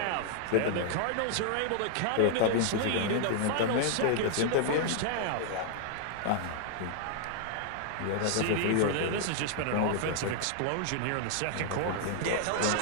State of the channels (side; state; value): both; different; correlation -0.01